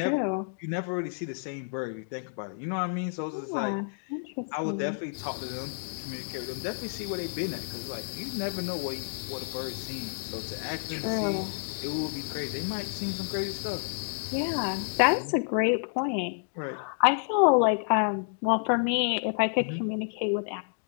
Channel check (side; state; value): right; silent; digital silence